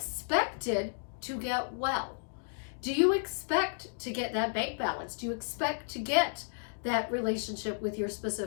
to get well. Do you expect to get that bank balance? Do you expect to get that relationship with your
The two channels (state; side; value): silent; right; digital silence